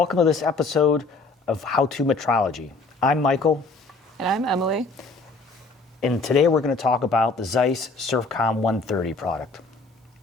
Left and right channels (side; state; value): right; quieter; 3.7 dB